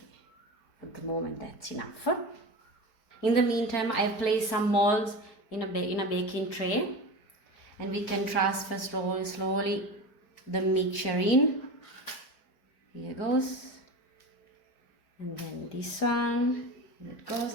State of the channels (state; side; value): late; right; 4.7 ms